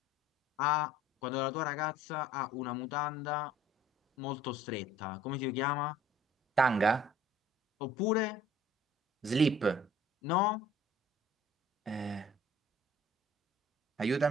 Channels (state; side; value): normal; both; correlation 0.53